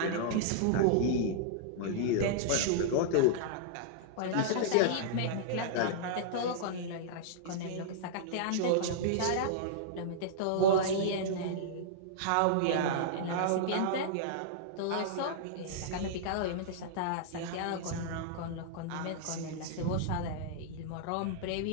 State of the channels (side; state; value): both; different; correlation -0.02